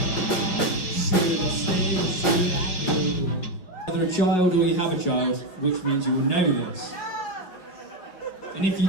Either a child or you have a child, which means you will know this. And if you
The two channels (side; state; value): right; late; 6.1 ms